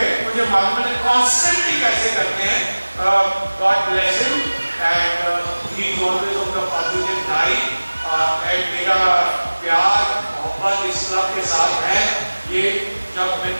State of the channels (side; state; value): both; inverted; correlation -1.00